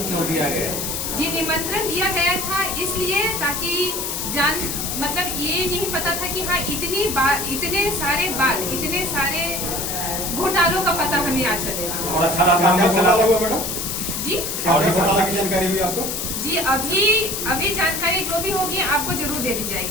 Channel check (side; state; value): left; noise; hiss, 3 dB below the sound